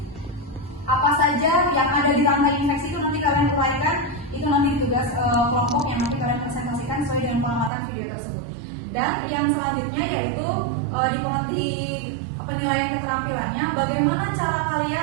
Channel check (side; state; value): left; drops out; at 7.7 s